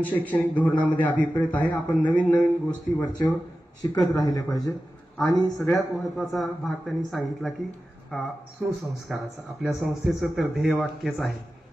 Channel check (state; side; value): normal; both; correlation 0.94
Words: शैक्षणिक धोरणामध्ये अभिप्रेत आहे. आपण नवीन नवीन गोष्टी वरचेवर शिकत राहिले पाहिजे. आणि सगळ्यात महत्वाचा भाग त्यांनी सांगितला की सुसंस्काराचा. आपल्या संस्थेचं तर ध्येयवाक्यच आहे